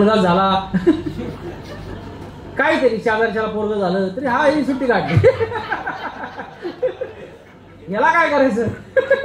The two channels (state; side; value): identical; both; correlation 1.00